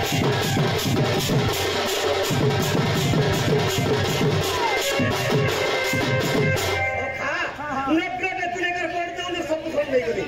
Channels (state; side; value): identical; both; correlation 1.00